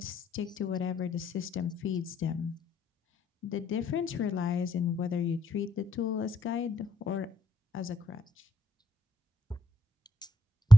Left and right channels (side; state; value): both; normal; correlation 0.77